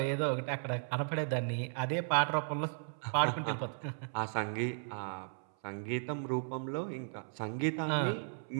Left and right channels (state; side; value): silent; left; 54 dB below the other